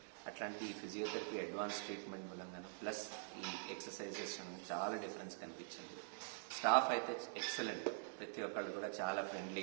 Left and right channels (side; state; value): left; silent; digital silence